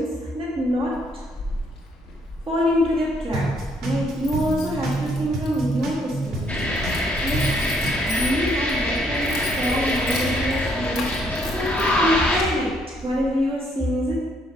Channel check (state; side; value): normal; both; correlation 0.69